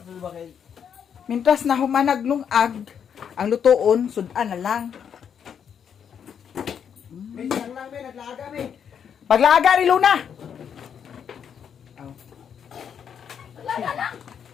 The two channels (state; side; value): quieter; right; 7.9 dB